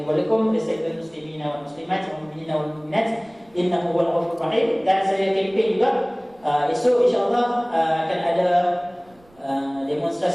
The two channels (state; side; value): noise; right; rumble, 30 dB below the sound